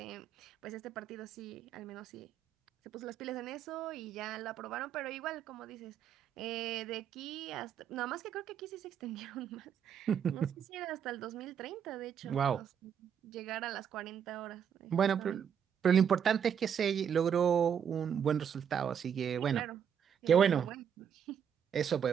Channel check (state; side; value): quieter; left; 8.2 dB